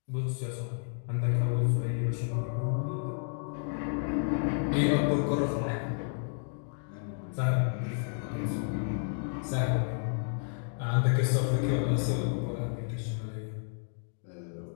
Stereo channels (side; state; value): right; silent; digital silence